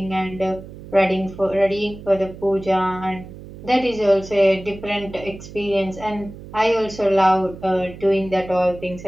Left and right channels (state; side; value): noise; right; hum, 15 dB below the sound